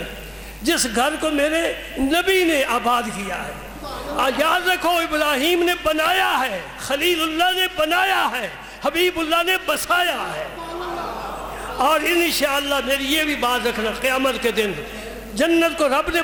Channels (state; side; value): identical; both; correlation 1.00